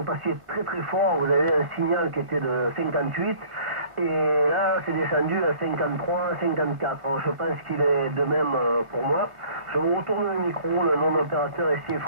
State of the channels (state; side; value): late; left; 1.5 ms